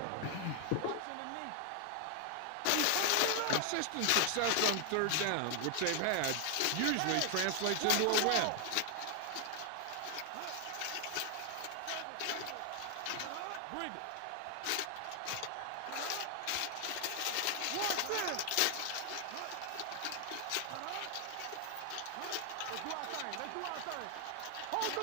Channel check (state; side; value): different; both; correlation 0.00